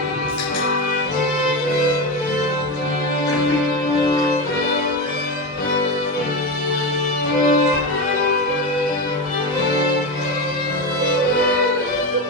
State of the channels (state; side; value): normal; both; correlation 0.18